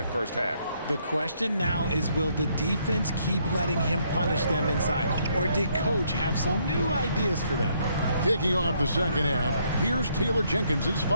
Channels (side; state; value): both; inverted; correlation -0.70